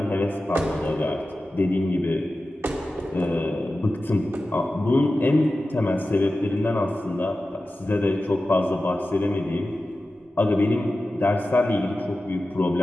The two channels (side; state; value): both; normal; correlation 0.94